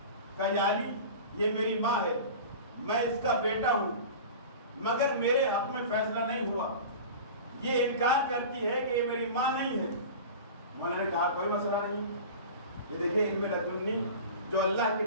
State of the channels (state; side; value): inverted; both; correlation -0.34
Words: کہا یا علی یہ میری ماں ہے، میں اس کا بیٹا ہوں، مگر میرے حق میں فیصلہ نہیں ہوا، یہ انکار کرتی ہے کہ یہ میری ماں نہیں ہے۔ مولا نے کہا کوئی مسئلہ نہیں، یہ دیکھیں علم لدنی جو اللہ کی